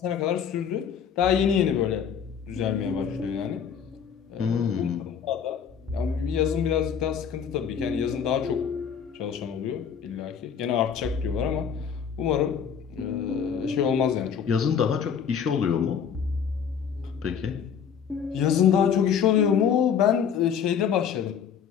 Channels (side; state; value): right; quieter; 7.5 dB